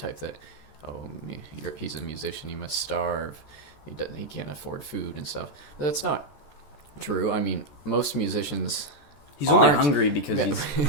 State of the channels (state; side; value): late; right; 14 ms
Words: that he's a musician, he must starve, he can't afford food and stuff. But that's not true. Most musicians, he's only hungry because he's